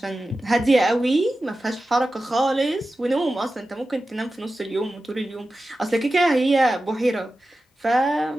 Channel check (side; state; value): both; normal; correlation 0.94